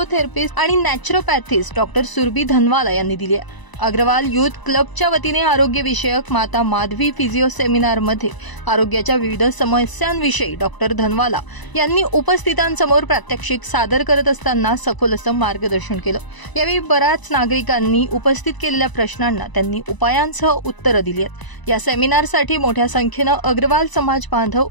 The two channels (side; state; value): right; late; 1.0 ms